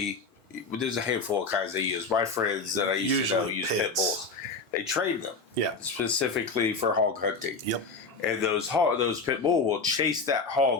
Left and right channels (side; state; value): right; quieter; 4.0 dB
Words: there's a handful of kinds they use. My friends that I used to know use pit bulls. They train them. Yeah. Specifically for hog hunting. Yep. And those pit bull will chase that